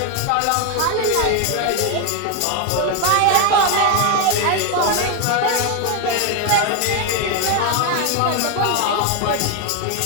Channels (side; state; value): both; different; correlation 0.01